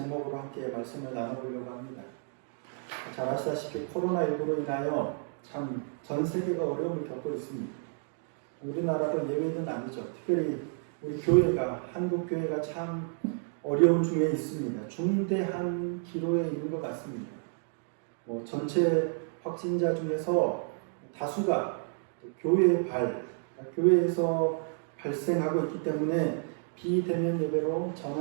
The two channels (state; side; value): silent; left; 57 dB below the other